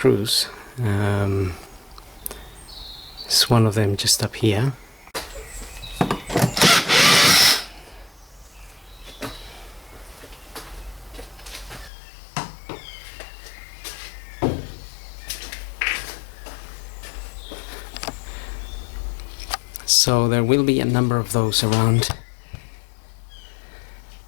It's one of them just up here. So there will be a number of those around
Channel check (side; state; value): right; drops out; at 11.9 s